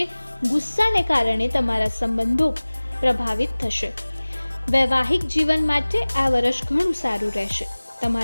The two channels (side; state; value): both; inverted; correlation -1.00